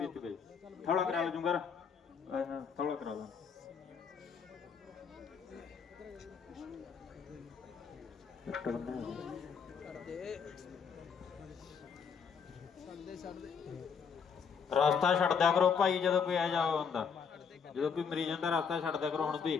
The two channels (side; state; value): right; quieter; 6.4 dB